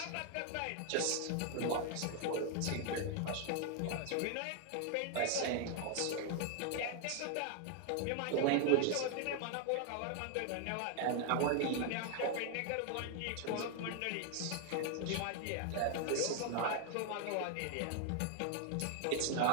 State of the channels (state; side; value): different; both; correlation 0.00